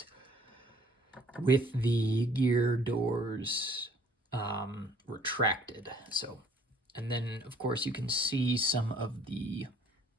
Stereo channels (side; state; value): both; normal; correlation 0.58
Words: with the gear doors retracted. So, and then of course you can see some of the